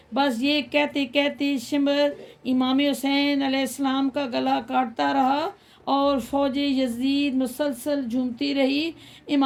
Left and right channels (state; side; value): identical; both; correlation 1.00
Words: بس یہ کہتے کہتے شمر امام حسین علیہ السلام کا گلا کاٹتا رہا اور فوج یزید مسلسل جھومتی رہی۔